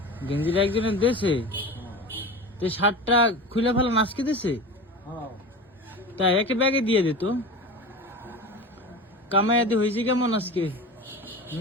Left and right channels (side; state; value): both; normal; correlation 0.30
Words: গেঞ্জিটা একজনের দেশে, তো শার্টটা খুলে ফেলা নাচকে দিছে। হ্যাঁ তাই একে ব্যাগে দিয়ে দিত। কামাইয়াদি হয়েছে কেমন আজকে?